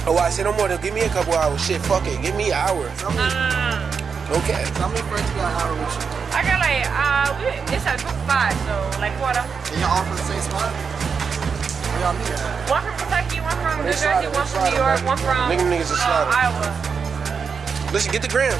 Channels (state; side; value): quieter; left; 5.9 dB